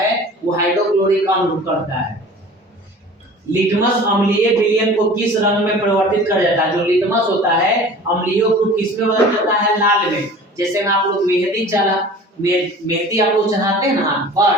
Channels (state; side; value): normal; both; correlation 0.42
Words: वो हाइड्रोक्लोरिक अम्ल करता है। लिटमस अम्लीय विलयन को किस रंग में परिवर्तित कर जाता है? जो लिटमस होता है अम्लीय को किस में बदल जाता है? लाल में। जैसे में आप लोग मेहंदी आप लोग चढ़ाते हैं ना पर,